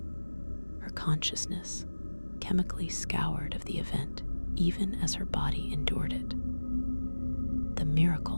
her consciousness chemically scoured of the event even as her body endured it. The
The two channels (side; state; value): both; inverted; correlation -1.00